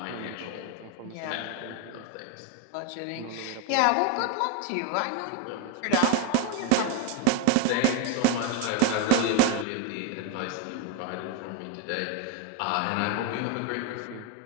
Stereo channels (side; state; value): both; different; correlation 0.01